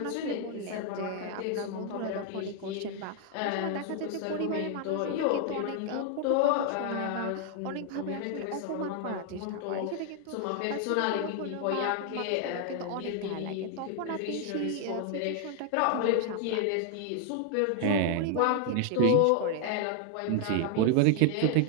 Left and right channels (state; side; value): different; both; correlation 0.00